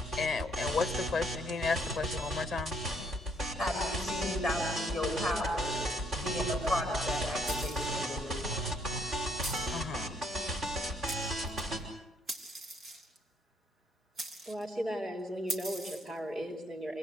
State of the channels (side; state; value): both; normal; correlation 0.68